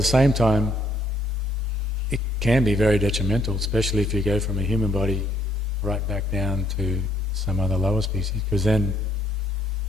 same time, it can be very detrimental, especially if you go from a human body right back down to some other lower species, because then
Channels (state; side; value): normal; both; correlation 0.68